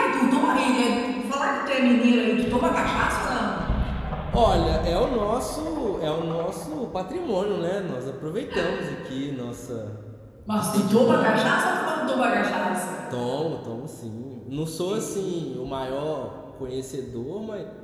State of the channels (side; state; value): both; identical; correlation 1.00